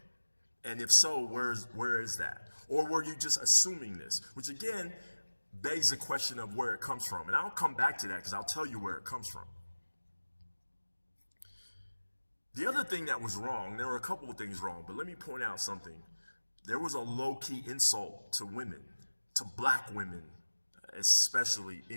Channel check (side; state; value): both; inverted; correlation -1.00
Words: And if so, where is that? Or were you just assuming this? Which again, begs the question of where it comes from. And I'll come back to that because I'll tell you where it comes from. The other thing that was wrong, there were a couple of things wrong, but let me point out something. There was a low-key insult to women, to Black women, especially